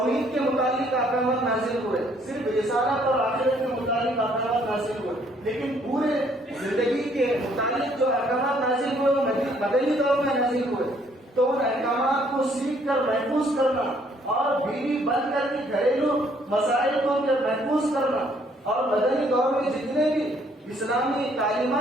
کے متعلق احکامات نازل ہوئے، صرف رسالت اور آخرت کے متعلق احکامات نازل ہوئے، لیکن پورے زندگی کے متعلق جو احکامات نازل ہوئے وہ مدنی دور میں نازل ہوئے۔ تو ان احکامات کو سیکھ کر محفوظ کرنا اور بیوی بند کر کے گھریلو مسائل کو محفوظ کرنا، اور مدنی دور میں جتنے بھی اسلامی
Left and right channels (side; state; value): both; normal; correlation 0.65